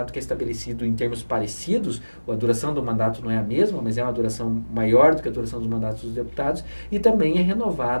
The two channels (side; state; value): both; inverted; correlation -1.00